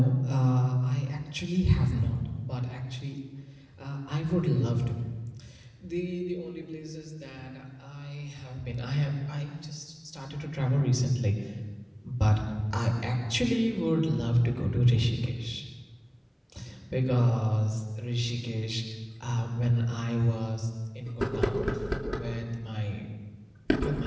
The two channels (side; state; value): both; identical; correlation 1.00